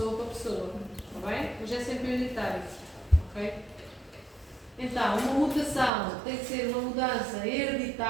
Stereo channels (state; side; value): drops out; left; at 5.9 s